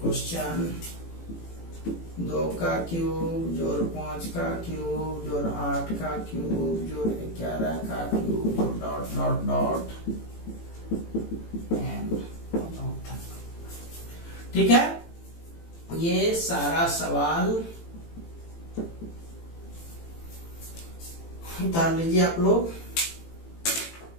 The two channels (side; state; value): right; late; 18 ms